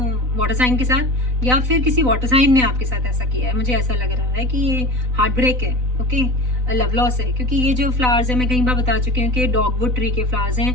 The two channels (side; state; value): left; late; 4.0 ms